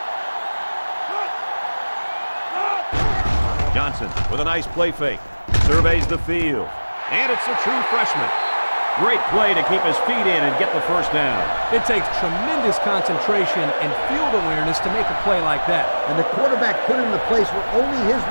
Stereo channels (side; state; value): both; inverted; correlation -1.00